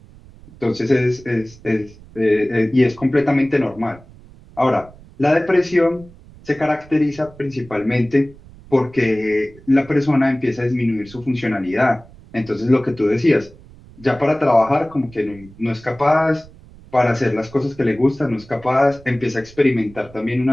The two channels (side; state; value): right; noise; rumble, 22 dB below the sound